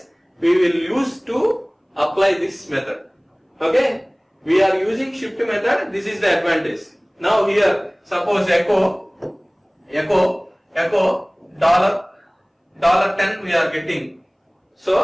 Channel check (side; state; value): both; identical; correlation 1.00